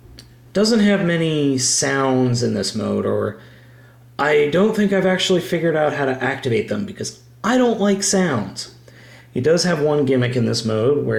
Doesn't have many sounds in this mode, or I don't think I've actually figured out how to activate them because I don't like sounds. He does have one gimmick in this mode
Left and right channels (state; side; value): identical; both; correlation 1.00